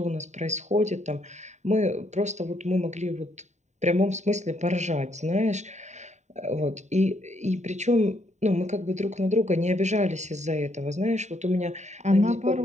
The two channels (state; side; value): late; left; 0.34 ms